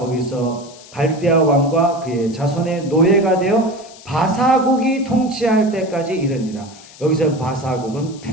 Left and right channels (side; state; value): left; noise; hiss, 21 dB below the sound